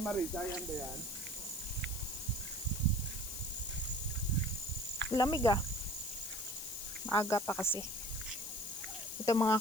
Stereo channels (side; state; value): left; noise; hiss, 6 dB below the sound